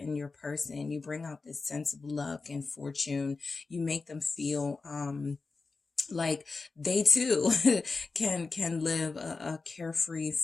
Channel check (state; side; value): quieter; right; 4.1 dB